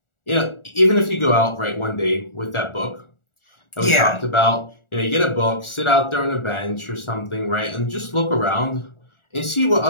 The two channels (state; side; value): late; right; 1.4 ms